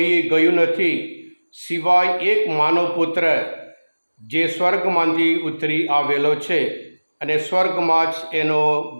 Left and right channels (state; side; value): inverted; both; correlation -1.00